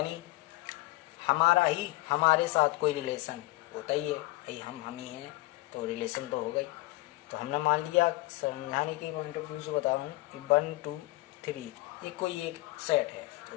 हमारा ही हमारे साथ कोई रिलेशन होता ही है, भाई हम ही हैं तो रिलेशन तो हो गई। तो हमने मान लिया, समझाने के पॉइंट ऑफ व्यू से बता रहा हूँ कि 1 2 3 ये कोई एक सेट है, तो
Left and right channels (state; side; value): quieter; right; 20.3 dB